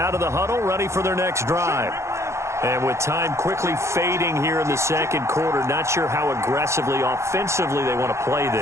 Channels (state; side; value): late; left; 0.14 ms